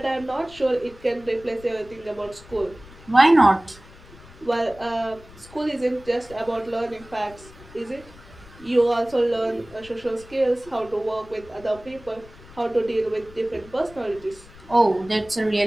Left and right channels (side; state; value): left; noise; rumble, 21 dB below the sound